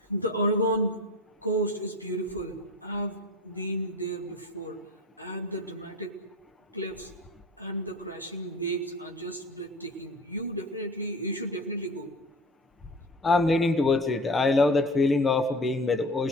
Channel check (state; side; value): normal; both; correlation 0.36